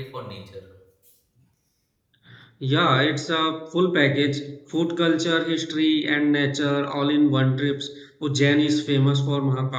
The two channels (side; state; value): both; identical; correlation 1.00